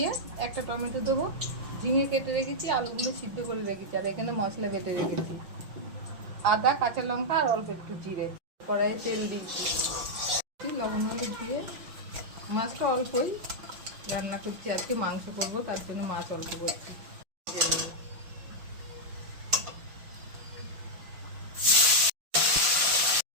একটা টমেটো দেবো, ঝিঙে কেটে রেখেছি, আলুগুলো সিদ্ধ করে রেখেছি, আর এখানে মশলা বেটে রেখেছি, আদা, কাঁচা লঙ্কা আর অল্প একটু জিরে। কড়াইয়ে তেল দিয়েছি, লবণ হলুদ দিয়ে মাছটা অল্পই রান্না করছি, আজকে মাংস করবো, তার জন্য মাছ অল্প করছি।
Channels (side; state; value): left; late; 5.9 ms